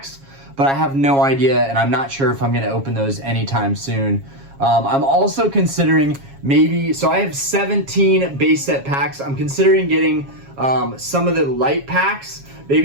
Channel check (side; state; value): left; late; 7.3 ms